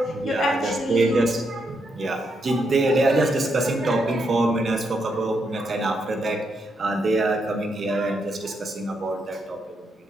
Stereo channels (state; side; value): normal; both; correlation 0.80